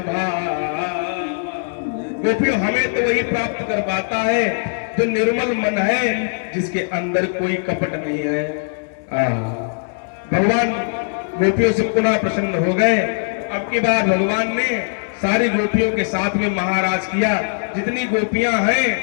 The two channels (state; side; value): silent; right; 66 dB below the other